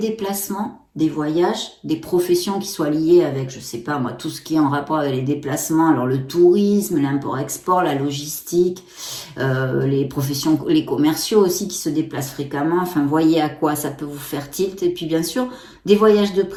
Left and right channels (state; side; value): identical; both; correlation 1.00